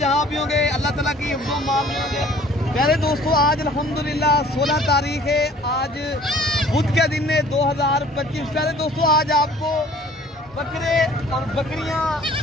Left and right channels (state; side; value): normal; both; correlation 0.52